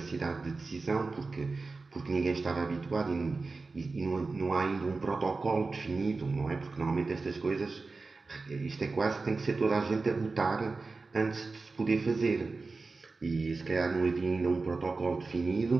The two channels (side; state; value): left; quieter; 3.9 dB